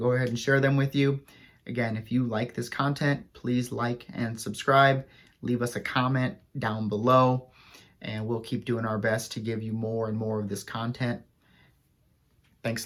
ahead and share them with you. Again, if you like this content, please like and subscribe. Leave us a comment down below, and we'll keep doing our best to give you more and more of this content. Thanks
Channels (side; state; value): both; identical; correlation 1.00